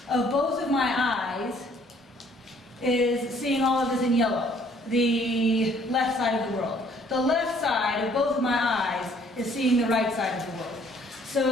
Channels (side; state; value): both; normal; correlation 0.61